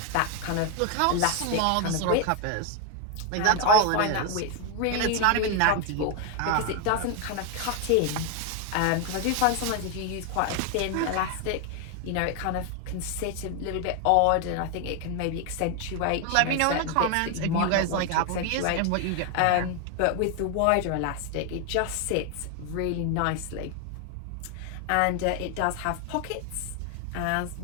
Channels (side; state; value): both; different; correlation 0.01